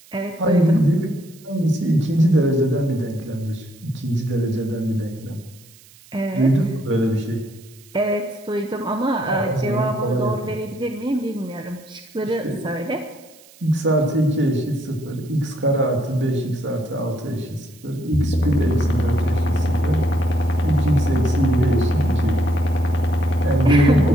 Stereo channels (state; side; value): noise; right; hiss, 25 dB below the sound